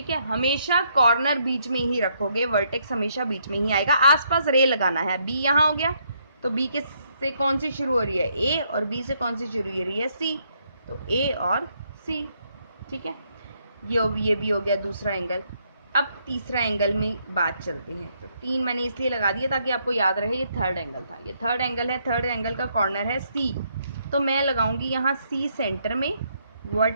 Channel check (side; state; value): both; inverted; correlation -0.73